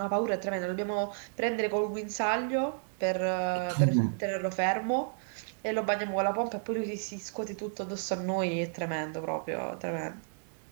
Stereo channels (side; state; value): left; silent; 56 dB below the other